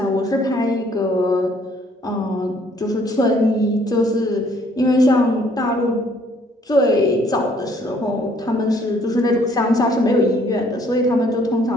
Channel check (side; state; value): both; normal; correlation 0.63